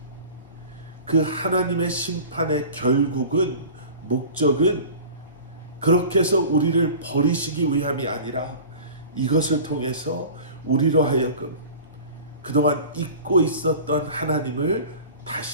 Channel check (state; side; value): inverted; both; correlation -0.39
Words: 그 하나님의 심판의 결국은, 목적은 그렇게 해서 우리를 버리시기 위함이 아니라 이것을 통해서 우리로 하여금 그동안 잊고 있었던 하나님을